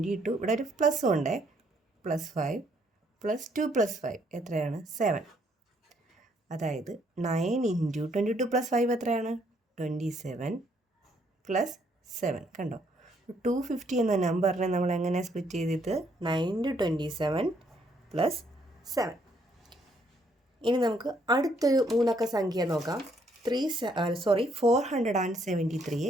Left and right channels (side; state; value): both; normal; correlation 0.69